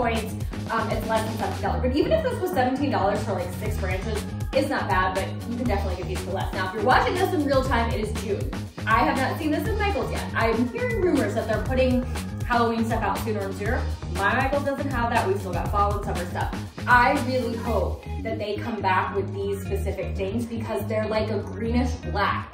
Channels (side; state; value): both; identical; correlation 1.00